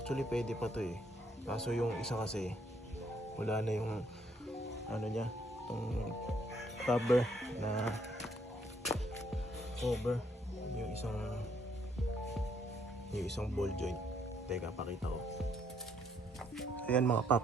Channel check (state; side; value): normal; both; correlation 0.69